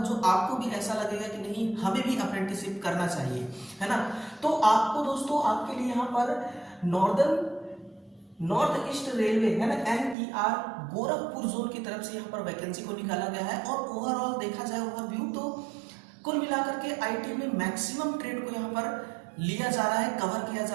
आपको भी ऐसा लगेगा कि नहीं, हमें भी अप्रेंटिसशिप करना चाहिए, है ना। तो आपको दोस्तों, आपके लिए यहाँ पर नॉर्थ ईस्ट रेलवे है ना, NER गोरखपुर जोन की तरफ से यहाँ पर वैकेंसी को निकाला गया है। और ओवरऑल देखा जाए, ओवरव्यू, तो कुल मिलाकर के आईटी में मैक्सिमम ट्रेड को यहाँ पर लिया जा रहा है, कवर किया जा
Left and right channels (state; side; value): drops out; left; at 10.2 s